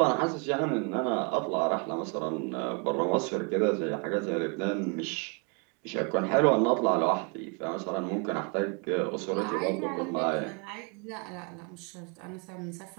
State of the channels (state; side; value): quieter; left; 33.4 dB